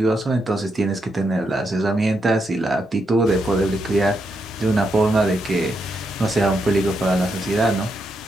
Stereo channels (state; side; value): normal; both; correlation 0.81